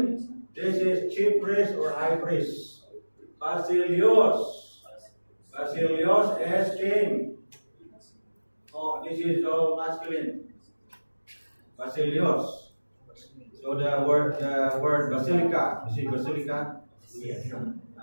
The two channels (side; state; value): both; inverted; correlation -1.00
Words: This is chief priest or high priest. Basilios. Basilios is king. Oh, this is all masculine. Basilios. So the word basilica. You see basilica?